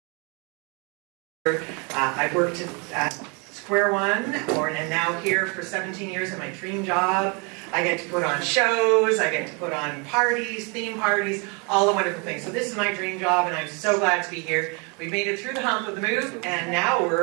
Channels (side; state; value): left; quieter; 32.6 dB